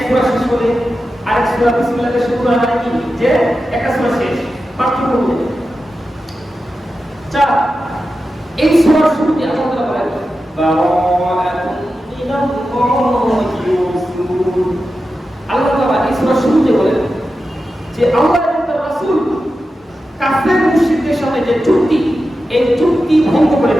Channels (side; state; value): both; normal; correlation 0.91